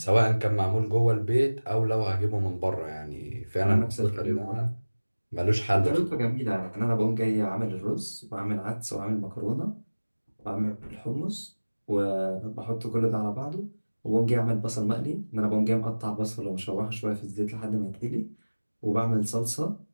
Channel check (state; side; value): inverted; both; correlation -1.00